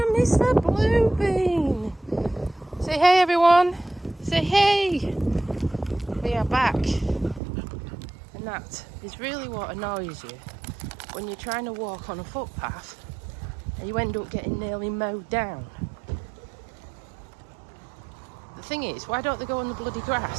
Mr. Bluebean. Say hey everyone, say hey. We are back, and that is really what annoys you when you're trying to walk on a footpath and you end up getting nearly mowed down. The thing is, why don't they go on the bloody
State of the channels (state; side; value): drops out; left; at 7.4 s